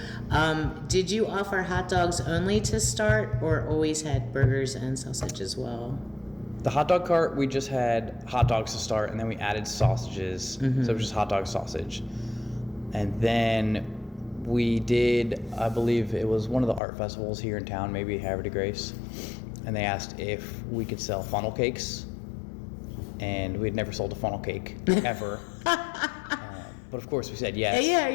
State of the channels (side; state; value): right; drops out; at 16.8 s